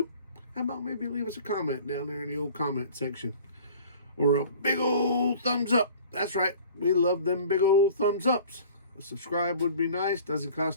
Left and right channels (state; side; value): inverted; both; correlation -0.46